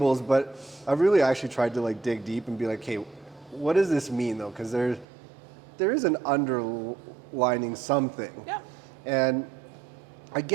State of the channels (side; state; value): left; drops out; at 5.1 s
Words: but I've really actually tried to like dig deep and be like, hey, what does this mean though? Because there is an underlining something. Yeah. And I